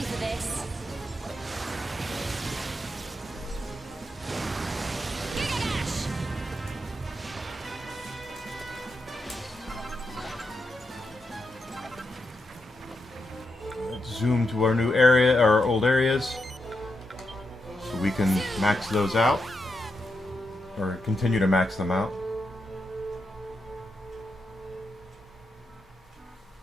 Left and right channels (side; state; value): both; normal; correlation 0.85